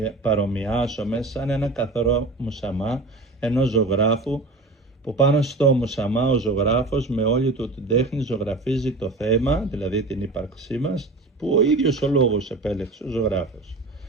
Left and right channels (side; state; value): left; quieter; 3.2 dB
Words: παρομοιάσουμε σαν ένα καθαρό μουσαμά ενός ζωγράφου, που πάνω στο μουσαμά ο ζωγράφος με όλη του την τέχνη ζωγραφίζει το θέμα, δηλαδή την ύπαρξή μας, που ο ίδιος ο λόγος επέλεξε ο ζωγράφος.